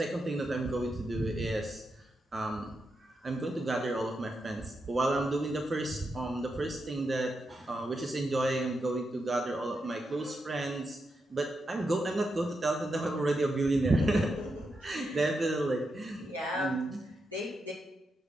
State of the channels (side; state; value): both; normal; correlation 0.85